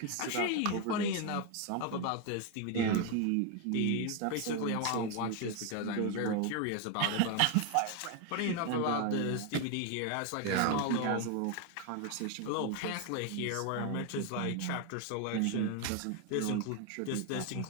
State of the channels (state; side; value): different; both; correlation 0.01